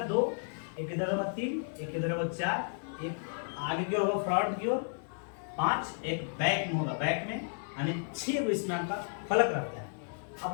2, एक इधर होगा 3, एक इधर होगा 4, एक आगे की ओर होगा फ्रंट की ओर 5, एक बैक में होगा, बैक में, यानी 6 को इसमें आपका फलक रहता है। अब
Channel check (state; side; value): silent; right; 56 dB below the other